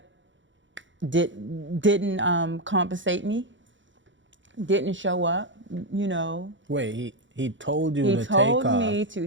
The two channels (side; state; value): left; late; 0.55 ms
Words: didn't compensate me. didn't show up, you know. Wait, he told you He to take told off me to